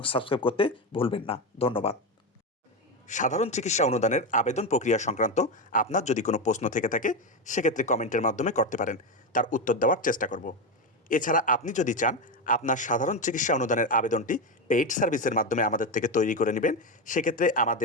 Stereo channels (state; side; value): normal; both; correlation 0.13